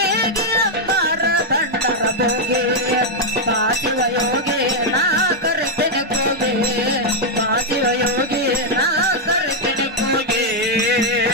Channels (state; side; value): normal; both; correlation -0.01